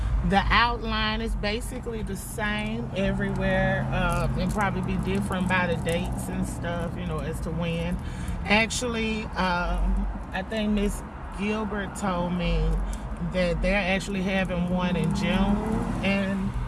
The outline is basically the same everywhere. It'll probably be different by the dates and stuff, you know, as to when. Actually, I think Miss Gilbert told me that they're actually having one in June, and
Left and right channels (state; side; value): identical; both; correlation 1.00